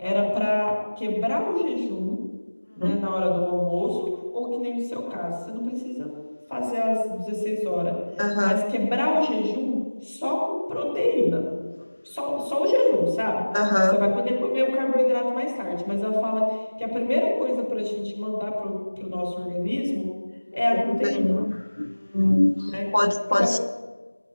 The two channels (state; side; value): inverted; both; correlation -1.00